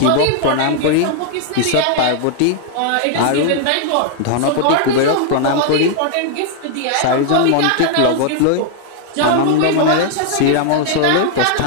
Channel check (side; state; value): both; different; correlation 0.00